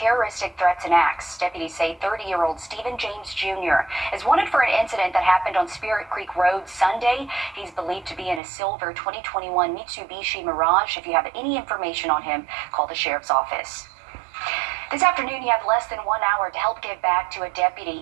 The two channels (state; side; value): drops out; left; at 8.4 s